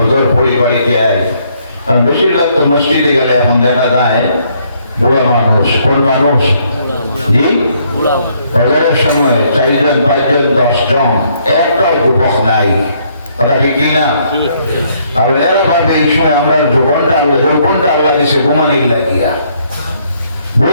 পড়ি, বাড়িতে আই। কারণ বেশিরভাগ তো মসজিদে গেলে এখন দেখা যায় বুড়া মানুষ। কোন মানুষ? জি, ফজরের সময় 4 জন 5 জন 10 জন, একটাও যুবক নাই। কথা কি না? আর এরা ভাবে এই সময় আমরা যৌবনটা আল্লাহ দিছে ঘুমানির লাগিয়া।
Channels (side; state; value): both; inverted; correlation -0.69